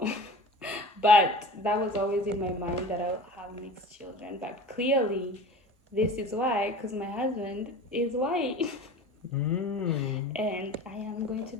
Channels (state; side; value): normal; both; correlation 0.38